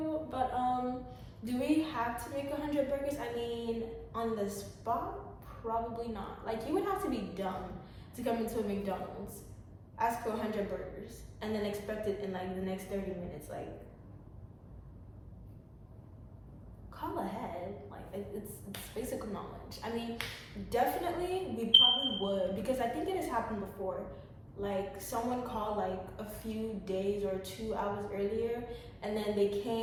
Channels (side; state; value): both; identical; correlation 1.00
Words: But do we have to make 100 burgers? I mean, on the spot, probably not. Like, you would have to be dumb to come into a McDonald's ask for 100 burgers and then expect it in like the next 30 minutes. Like, call ahead. Like, it's basic knowledge. I mean, definitely we probably would, because I think it has happened before. Like, someone called like a few days or 2 hours earlier, and then they